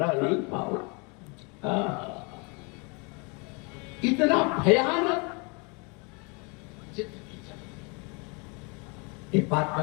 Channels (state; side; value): quieter; right; 31.8 dB